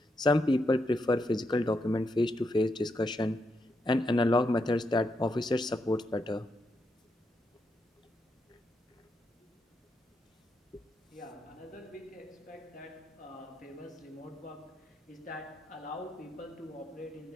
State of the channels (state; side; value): normal; both; correlation 0.81